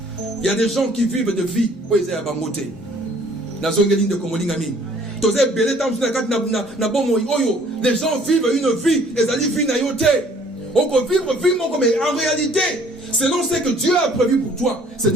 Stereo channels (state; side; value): normal; both; correlation 0.57